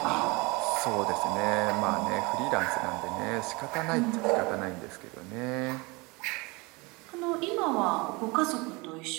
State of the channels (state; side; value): quieter; left; 26.0 dB